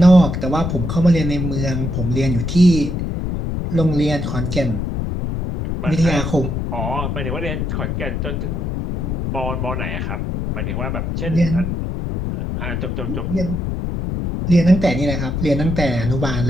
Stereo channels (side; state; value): left; noise; rumble, 2 dB below the sound